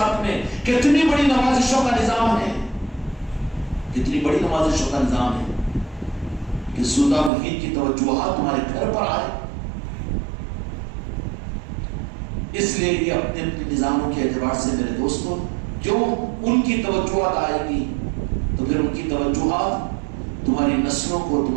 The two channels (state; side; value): drops out; left; at 7.3 s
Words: میں، کتنی بڑی نوازشوں کا نظام ہے، کتنی بڑی نوازشوں کا نظام ہے کہ سلطان الہند کی توجہات تمہارے گھر پر آئے۔ اس لیے یہ اپنے اپنے نظاموں کے اعتبار سے میرے دوستوں، جو ان کی توجہات آئے گی تو پھر ان کی توجہات تمہاری نسلوں کو،